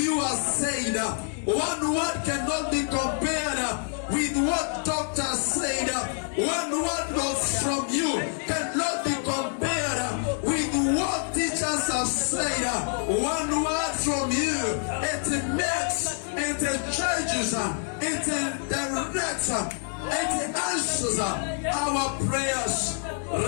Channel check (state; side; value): silent; right; 59 dB below the other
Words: said. One word cannot be compared with what doctors said. One word from you cannot be compared with what teachers have said. One word from you, it makes, it changes, it directs, it answers our prayers.